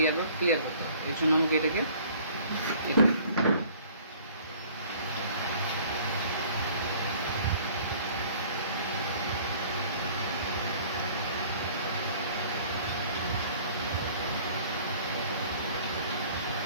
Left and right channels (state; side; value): inverted; both; correlation -0.53